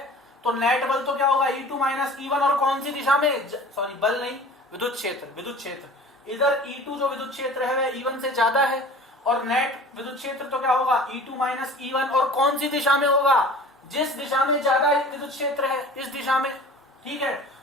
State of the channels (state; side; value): normal; both; correlation 0.43